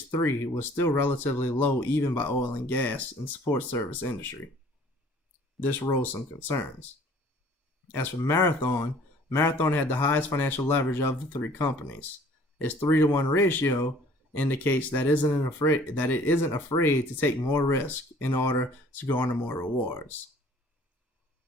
was still relatively low even by oil and gas and support service industry. This rose some concerns. As for Marathon had the highest financial leverage of the three companies. Its 3-to-1 ratio indicates that it isn't afraid to take more risk in order to garner more rewards.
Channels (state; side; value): normal; both; correlation 0.53